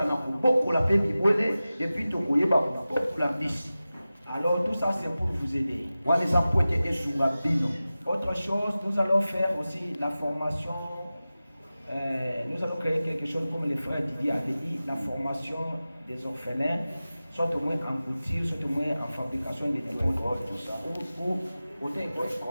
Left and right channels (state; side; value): inverted; both; correlation -0.95